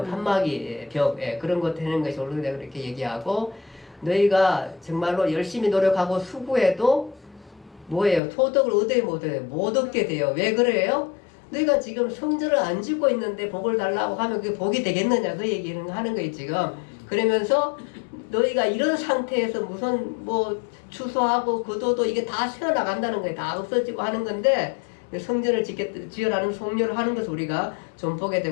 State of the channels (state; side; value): drops out; right; at 8.2 s